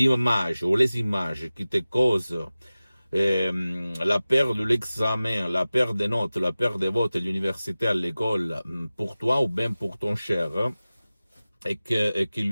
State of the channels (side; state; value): both; inverted; correlation -0.97